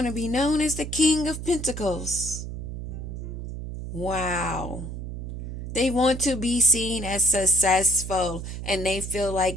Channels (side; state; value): right; noise; hum, 7 dB below the sound